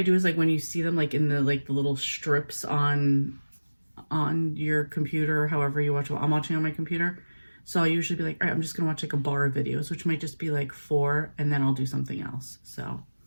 do is like when you see them like in the little strips on your computer, however you watch. I'm watching on my computer, so I'll usually be like, all right, I'm just gonna watch like a bar of videos, which might just be like 4, and then I'll do something else. So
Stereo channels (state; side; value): inverted; both; correlation -1.00